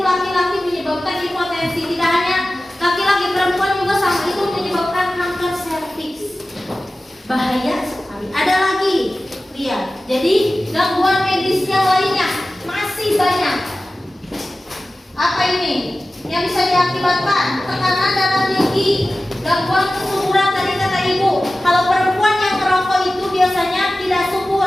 laki-laki, menyebabkan impotensi. Tidak hanya laki-laki, perempuan juga sama, itu menyebabkan kanker serviks. Bahaya sekali. Ada lagi, lihat. Jadi gangguan medis yang lainnya masih banyak. Apa ini yang bisa diakibatkan? Tekanan darah tinggi, gangguan kesuburan. Tadi kata ibu, kalau perempuan yang merokok itu biasanya tidak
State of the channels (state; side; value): normal; both; correlation 0.96